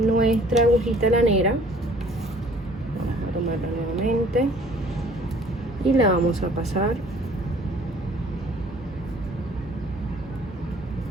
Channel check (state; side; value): normal; both; correlation 0.55